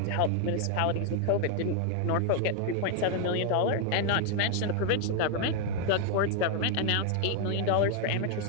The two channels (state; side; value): different; both; correlation 0.00